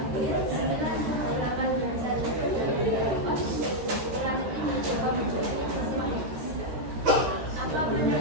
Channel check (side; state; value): left; late; 13 ms